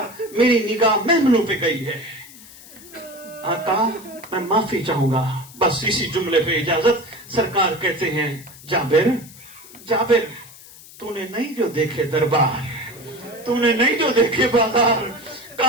میری نگاہ محملوں پہ گئی ہے. آقا میں معافی چاہوں گا. بس اسی جملے پہ اجازت. سرکار کہتے ہیں جابر جابر تو نے نہیں جو دیکھے دربار, تو نے نہیں جو دیکھے بازار,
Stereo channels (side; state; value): left; noise; hiss, 19 dB below the sound